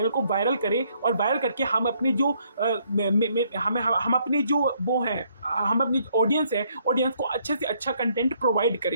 को वायरल करें, और वायरल करके हम अपनी जो वो है हम अपनी ऑडियंस को अच्छे से अच्छा कंटेंट प्रोवाइड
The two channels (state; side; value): inverted; both; correlation -0.69